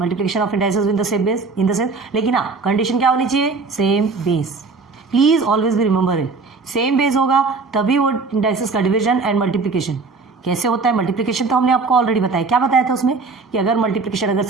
of indices with the same base in the sense. लेकिन हाँ, कंडीशन क्या होनी चाहिए? Same base. प्लीज ऑलवेज भी रिमेंबर इट, सेम बेस होगा तभी वो इंडाइसेस का डिवीजन एंड मल्टीप्लिकेशन। कैसे होता है मल्टीप्लिकेशन? तो हमने आपको ऑलरेडी बताया। क्या बताया था उसमें? कि अगर मल्टीप्लिकेशन अगर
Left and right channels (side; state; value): left; quieter; 4.2 dB